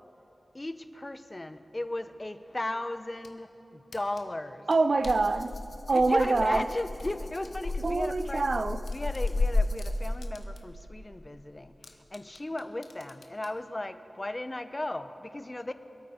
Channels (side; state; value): both; normal; correlation 0.95